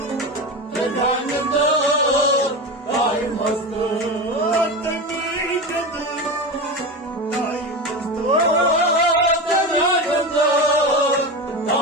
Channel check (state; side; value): normal; both; correlation 0.22